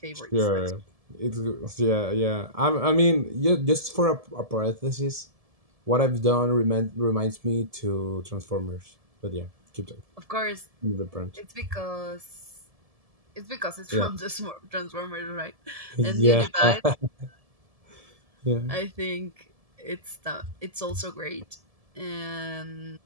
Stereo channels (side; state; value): left; late; 1.7 ms